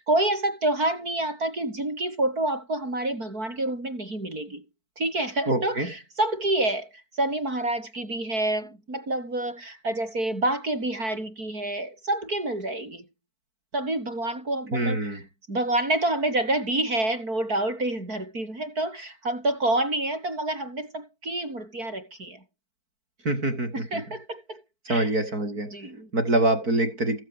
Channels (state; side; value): late; left; 4.5 ms